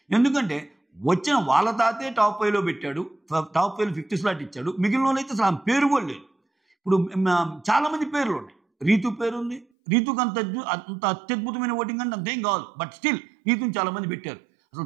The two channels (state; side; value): drops out; left; at 9.7 s